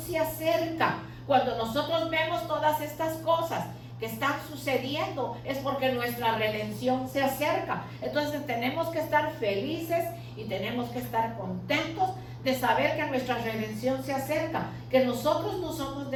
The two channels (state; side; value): identical; both; correlation 1.00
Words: acerca. Cuando nosotros vemos todas estas cosas que están sucediendo, es porque nuestra redención se acerca. Entonces tenemos que estar felices y tenemos que estar contentos de saber que nuestra redención se acerca, que nosotros no somos